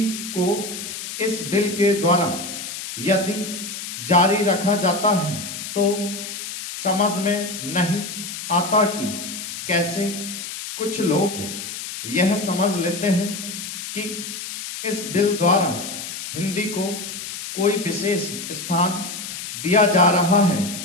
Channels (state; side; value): noise; left; hiss, 8 dB below the sound